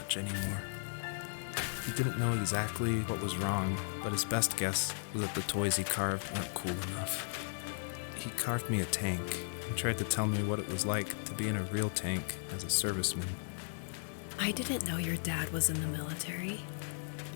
anymore. He didn't know exactly what was wrong, but his best guess was that the toys he carved weren't cool enough. He carved me a tank and tried to tell me what it was like to be in a real tank as a serviceman. I didn't know your dad was in the military.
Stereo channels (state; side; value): silent; right; digital silence